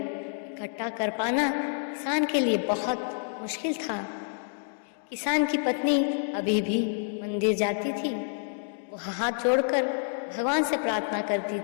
कर पाना किसान के लिए बहुत मुश्किल था। किसान की पत्नी अभी भी मंदिर जाती थी। वो हाथ जोड़कर भगवान से प्रार्थना करती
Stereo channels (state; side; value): silent; right; digital silence